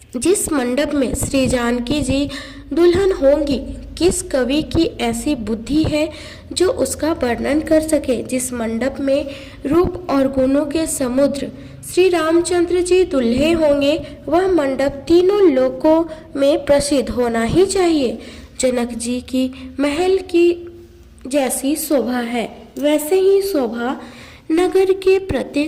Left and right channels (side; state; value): both; identical; correlation 1.00